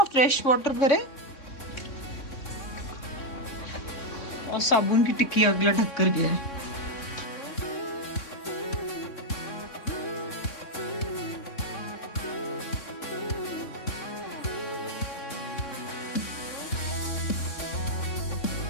फ्रेश वाटर भरे और साबुन की टिक्की अगला ढक कर गया है।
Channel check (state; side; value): late; right; 3.6 ms